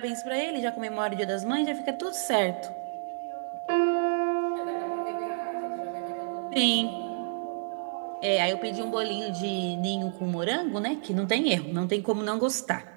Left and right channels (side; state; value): left; silent; digital silence